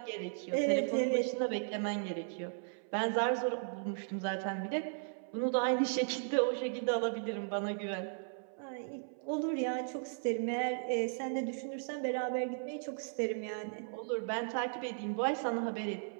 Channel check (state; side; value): silent; left; 54 dB below the other